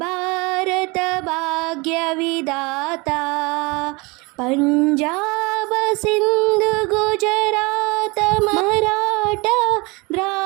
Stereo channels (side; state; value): left; quieter; 26.5 dB